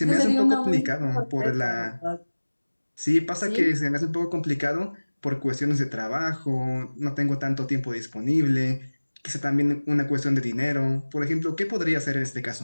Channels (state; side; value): inverted; both; correlation -1.00